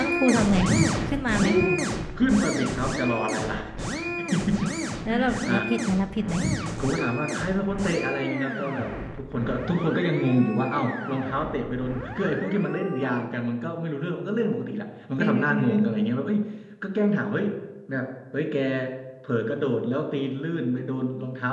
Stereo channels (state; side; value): identical; both; correlation 1.00